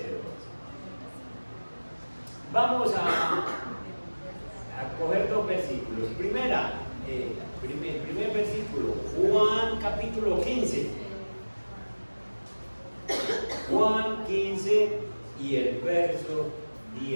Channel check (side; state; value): both; inverted; correlation -1.00